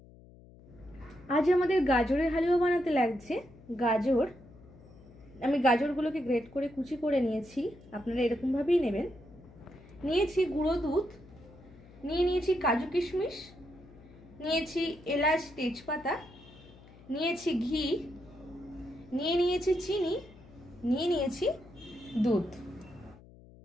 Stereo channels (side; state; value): left; noise; hum, 22 dB below the sound